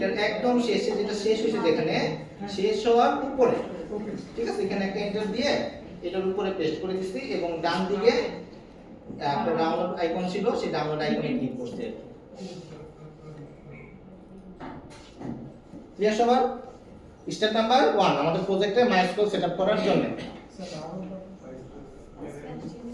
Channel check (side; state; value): both; identical; correlation 1.00